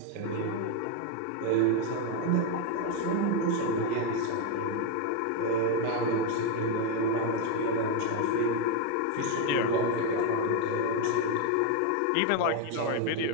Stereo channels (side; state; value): both; different; correlation 0.02